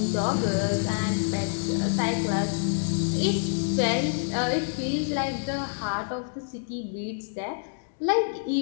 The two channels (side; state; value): right; silent; digital silence